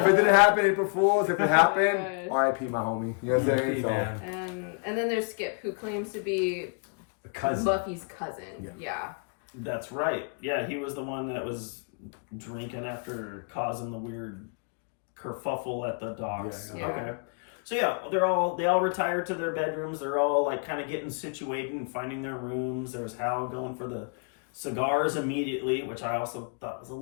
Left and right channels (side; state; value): right; quieter; 39.9 dB